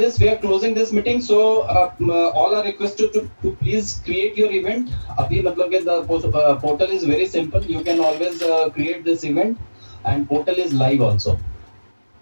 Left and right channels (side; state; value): both; inverted; correlation -1.00